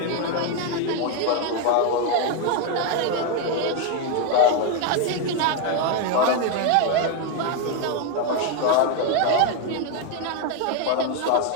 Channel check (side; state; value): both; different; correlation 0.01